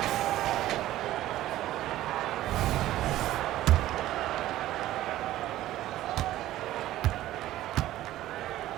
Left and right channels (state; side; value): quieter; left; 14.6 dB